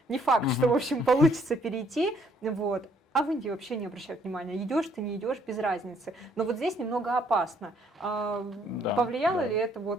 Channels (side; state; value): both; normal; correlation 0.66